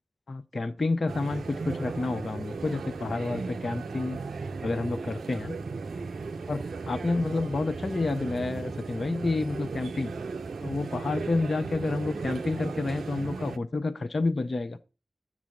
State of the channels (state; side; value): normal; both; correlation 0.93